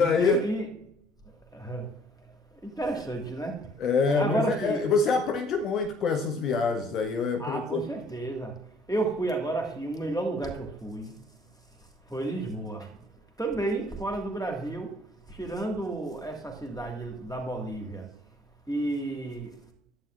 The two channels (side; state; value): both; normal; correlation 0.59